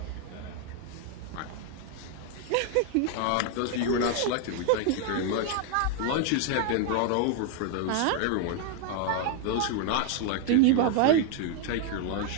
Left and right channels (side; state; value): both; different; correlation 0.00